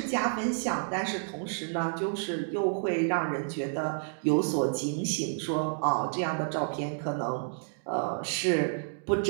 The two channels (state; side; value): silent; left; digital silence